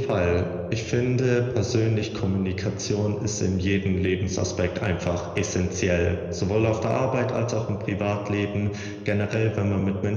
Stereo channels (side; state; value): both; identical; correlation 1.00